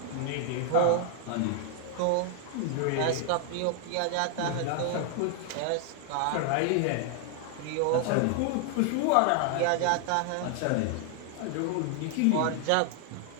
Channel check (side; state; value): both; different; correlation 0.00